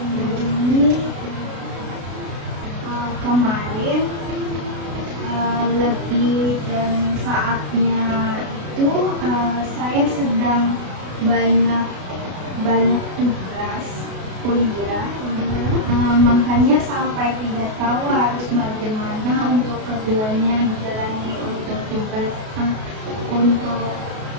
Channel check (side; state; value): left; late; 33 ms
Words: saya sedang banyak banyak tugas kuliah. Makanya sampai tidak tahu harus bagaimana untuk keduanya dijalani untuk tugas untuk